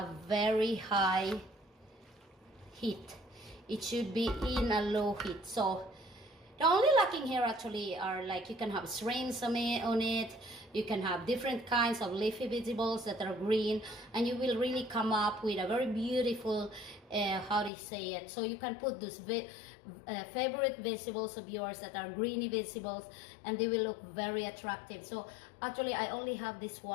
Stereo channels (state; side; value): drops out; right; at 17.7 s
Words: very high heat. It should be in a low heat. So the only lacking here actually are, like, you can have shrimps on it. You can have different kinds of leafy vegetables that are green, and you will really come up with a very beautiful, how do you say it? So you can put those favorite vegetables of yours that are greeny vegetables, and they will look very attractive. So actually I only have this